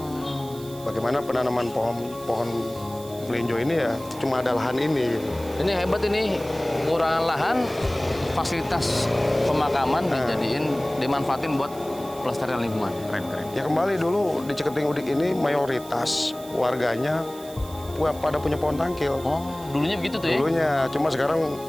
Bagaimana penanaman pohon melinjo ini ya cuma ada lahan ini. Gitu. Ini hebat ini, kekurangan lahan, fasilitas pemakaman dimanfaatin buat pelestarian lingkungan. Keren. Ya kembali dulu di Ciketing Udik ini mayoritas warganya pada punya pohon tangkil. Oh, dulunya begitu tuh ya? Dulunya, cuma sekarang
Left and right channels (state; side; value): noise; right; hiss, 19 dB below the sound